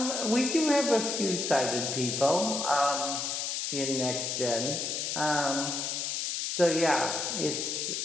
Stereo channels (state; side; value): noise; left; hiss, 2 dB below the sound